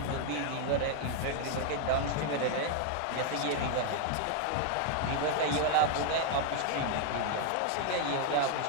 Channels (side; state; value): both; different; correlation 0.00